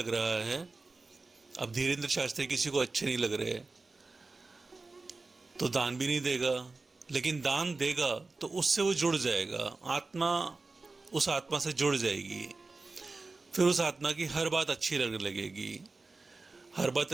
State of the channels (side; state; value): left; quieter; 3.7 dB